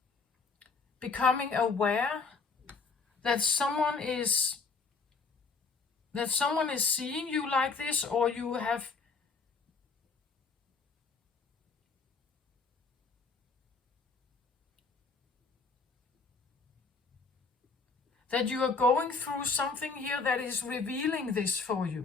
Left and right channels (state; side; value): quieter; right; 4.5 dB